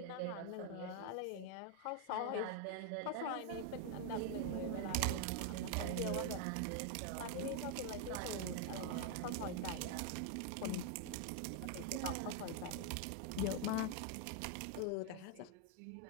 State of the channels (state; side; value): different; both; correlation 0.01